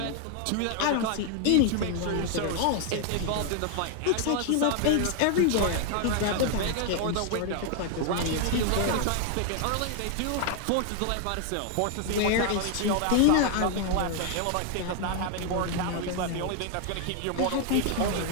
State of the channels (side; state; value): both; different; correlation 0.00